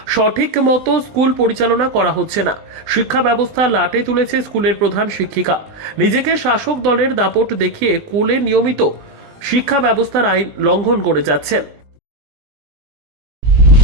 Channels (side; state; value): left; late; 20 ms